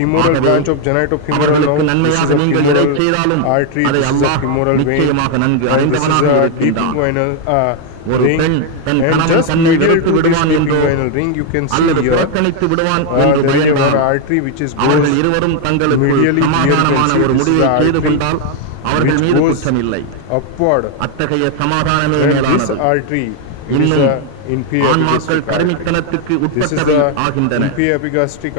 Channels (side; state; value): both; different; correlation 0.00